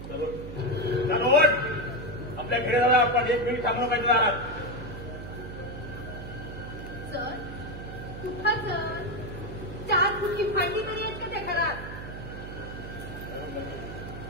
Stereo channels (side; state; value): right; noise; hum, 10 dB below the sound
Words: चलो आपल्या घरी जाऊया आपण. 1 मिनिट थांबलो पाहिजे दारात. सर कुठं सर 4 फुटकी भांडी तरी आहेत का त्या घरात.